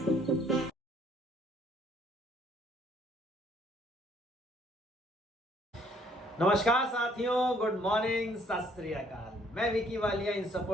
साथियों, good morning, सत श्री अकाल। मैं विकी वालिया इन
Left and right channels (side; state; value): both; normal; correlation 0.64